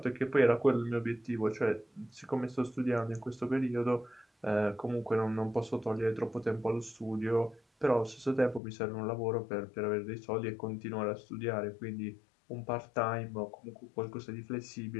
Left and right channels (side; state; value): right; drops out; at 8.6 s